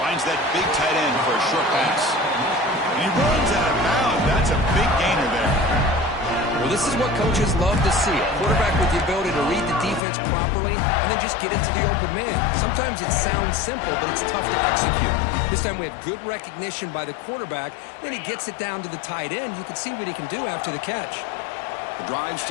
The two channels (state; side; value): drops out; right; at 10.0 s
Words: that big tight end for a short pass. And he runs out of bounds. That's a big gainer there. Well, this is what coaches love to see. A quarterback with the ability to read the defense properly and then just get it to the open man. Sometimes it sounds simple, but it's tough to execute. This time we have good recognition by the quarterback. Then he gets it down to the tight end. You can see what he can do after the catch. The drive